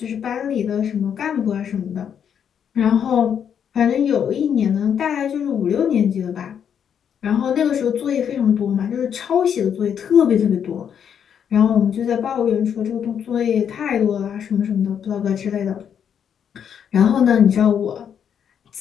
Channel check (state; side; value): quieter; right; 8.2 dB